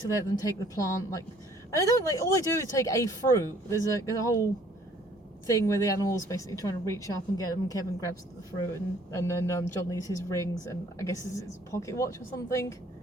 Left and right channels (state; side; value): normal; both; correlation 0.58